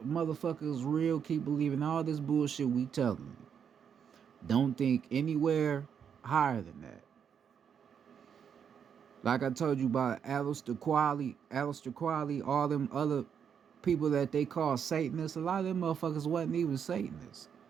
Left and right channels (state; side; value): quieter; left; 7.6 dB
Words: motherfucker is real. Keep believing all this bullshit we telling you. Don't think anywhere higher than that. Like I told you about Aleister Crowley, all them other people that they call Satanists, a lot of them motherfuckers wasn't even Satanists.